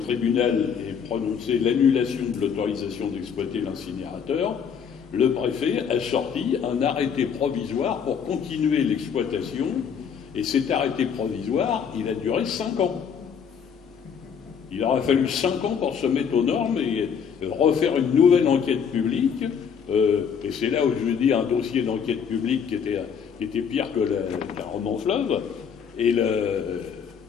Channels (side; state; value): right; quieter; 7.1 dB